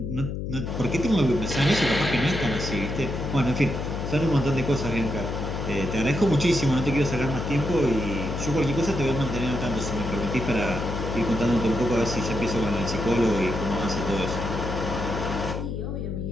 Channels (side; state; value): left; noise; hum, 4 dB below the sound